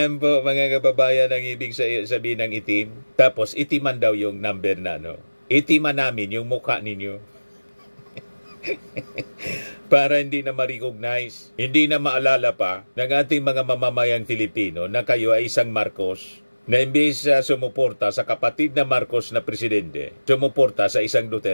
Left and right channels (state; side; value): inverted; both; correlation -1.00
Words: po mga kababayan ang ibig sabihin ng itim. Tapos itiman daw yung number na Itiman namin yung mukha ninyo. Para hindi na ma-recognize, hindi na maalala pa ng ating mga mamamayang Filipino na kayo ay isang Marcos na imbes sumuporta sa kapatid na Marcos na presidente, sumuporta sa isang